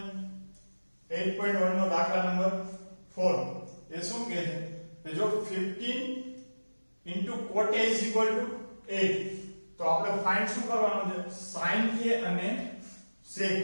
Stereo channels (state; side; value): inverted; both; correlation -1.00